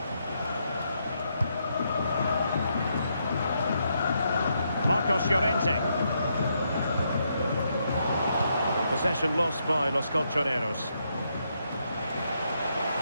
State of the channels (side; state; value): both; inverted; correlation -0.78